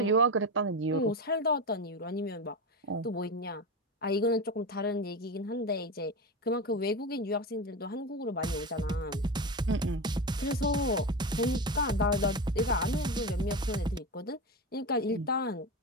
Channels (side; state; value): both; normal; correlation 0.20